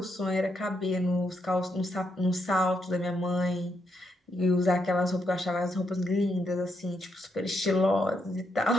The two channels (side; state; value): both; normal; correlation 0.78